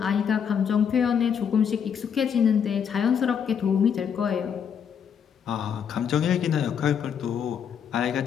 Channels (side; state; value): right; quieter; 7.6 dB